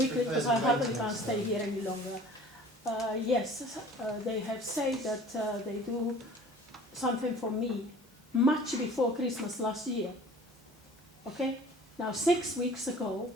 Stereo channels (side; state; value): both; normal; correlation 0.47